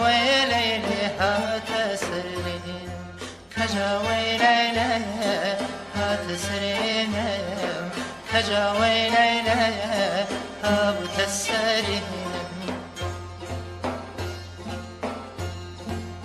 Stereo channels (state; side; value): identical; both; correlation 1.00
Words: لەیلێ هاتە سرێنم کەجا وەی لەیلێ هاتە سرێنم کەجا وەی لەیلێ هاتە سرێنم